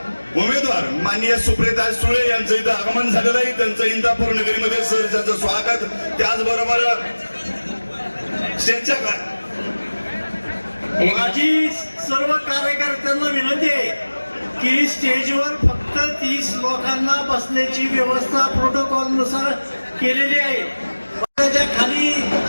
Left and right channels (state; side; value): inverted; both; correlation -1.00